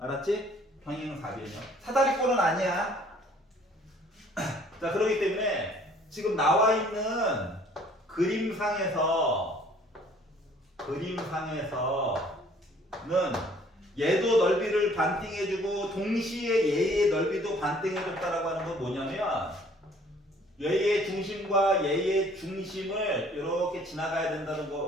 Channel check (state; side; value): normal; both; correlation 0.57